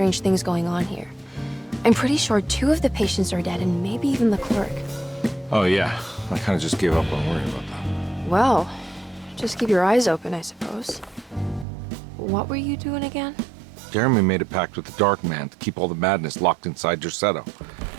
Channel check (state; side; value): drops out; left; at 11.7 s